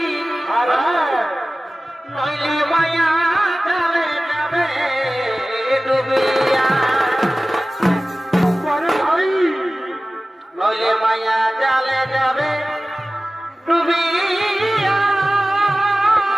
নইলে মায়া জালে যাবে ডুবিয়া নইলে মায়া জালে যাবে ডুবিয়া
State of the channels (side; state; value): both; normal; correlation 0.97